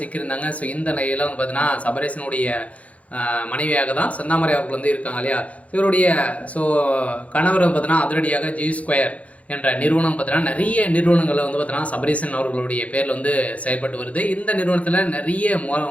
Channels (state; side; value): late; right; 0.066 ms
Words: ஸோ இந்த நிலையில் பார்த்தீங்கன்னா சபரீசனுடைய மனைவியாக தான் செந்தாமரை அவர்கள் இருக்காங்க இல்லையா. இவருடைய கணவர் பார்த்தீங்கன்னா அதிரடியாக G2 என்ற நிறுவனம் பார்த்தீங்கன்னா நிறைய நிறுவனங்களில் பார்த்தீங்கன்னா சபரீசன் அவர்களுடைய பேரில் செயல்பட்டு வருது. இந்த நிறுவனத்தில் நிறைய